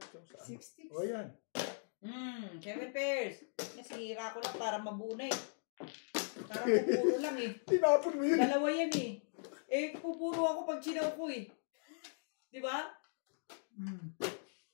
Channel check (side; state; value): right; silent; digital silence